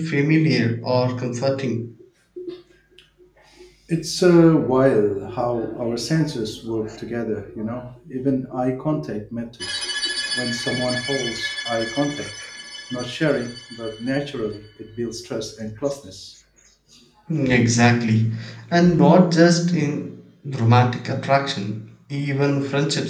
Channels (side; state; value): both; identical; correlation 1.00